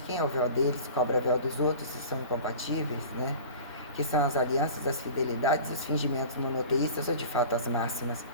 quem é o véu deles, cobra o véu dos outros, se são incompatíveis, né? Que são as alianças, as fidelidades, os fingimentos monoteístas, ou de fato as máximas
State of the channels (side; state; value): both; inverted; correlation -0.39